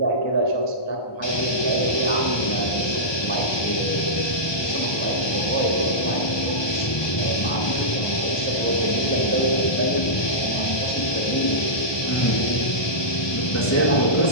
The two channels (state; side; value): late; right; 1.2 ms